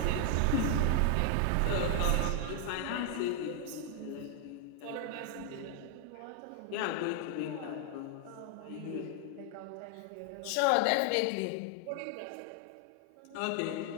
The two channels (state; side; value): different; both; correlation 0.00